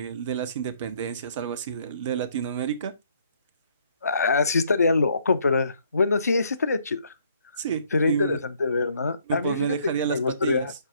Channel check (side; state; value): both; inverted; correlation -0.65